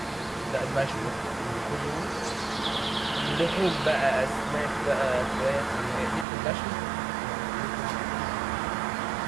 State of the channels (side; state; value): left; drops out; at 6.2 s